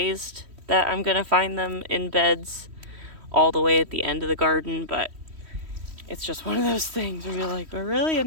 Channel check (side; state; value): left; late; 3.1 ms